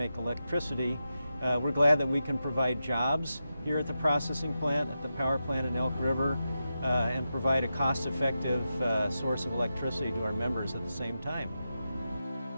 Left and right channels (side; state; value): both; inverted; correlation -0.90